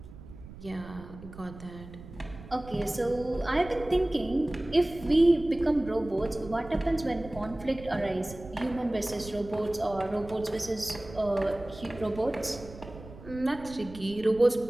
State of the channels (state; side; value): noise; right; rumble, 16 dB below the sound